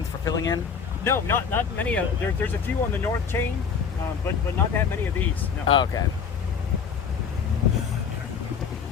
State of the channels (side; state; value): right; quieter; 6.4 dB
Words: for filling in. No, not many. There's a few on the north chain, but not that many of these. No. Oh, okay.